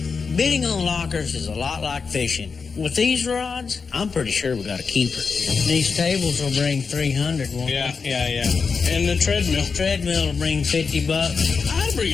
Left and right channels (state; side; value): quieter; right; 5.2 dB